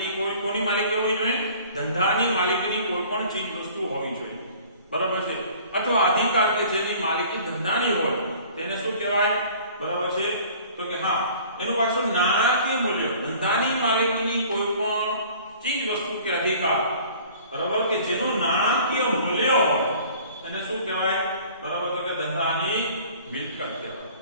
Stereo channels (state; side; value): inverted; both; correlation -0.49